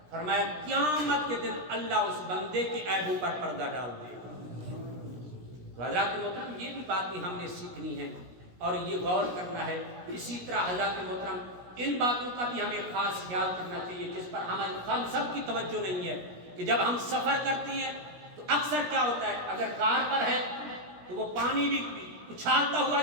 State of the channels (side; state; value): left; late; 17 ms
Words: فرمایا قیامت کے دن اللہ اس بندے کے عیبوں پر پردہ ڈال دے گا۔ تو حضرات محترم یہ بھی باتیں ہم نے سیکھنی ہے اور یہ غور کرنا ہے۔ اسی طرح حضرات محترم ان باتوں کا بھی ہمیں خاص خیال کرنا چاہیے جس پر ہم سب کی توجہ نہیں ہے کہ جب ہم سفر کرتے ہیں تو اکثر کیا ہوتا ہے، اگر کار پر ہے تو وہ پانی بھی اچھالتا ہوا